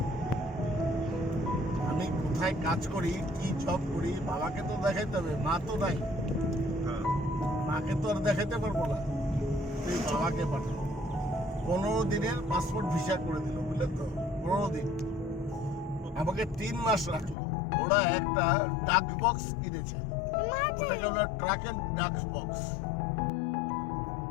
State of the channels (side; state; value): right; drops out; at 17.4 s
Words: আমি কোথায় কাজ করি, কি জব করি, বাবাকে তো দেখাইতে হবে, মা তো নাই, মাকে তো আর দেখাইতে পারবো না, তুই বাবাকে পাঠা। 15 দিনের পাসপোর্ট ভিসা করে দিল, বুঝলেন তো? 15 দিন আমাকে 3 মাস রাখলো। ওরা একটা ডাক বক্স কিনেছে, ওটাকে বলে ট্রাক এন্ড ডাক বক্স।